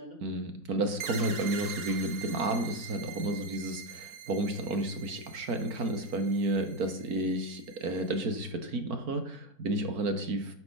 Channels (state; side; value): late; left; 4.5 ms